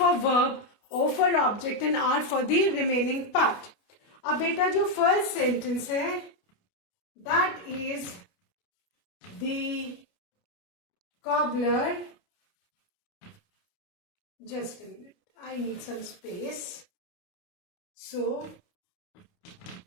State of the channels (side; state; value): right; late; 29 ms